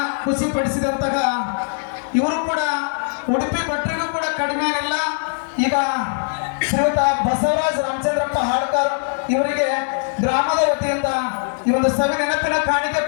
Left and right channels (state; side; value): silent; right; digital silence